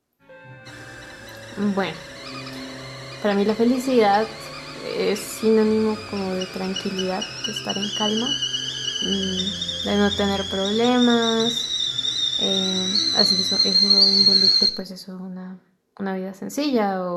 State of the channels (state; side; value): identical; both; correlation 1.00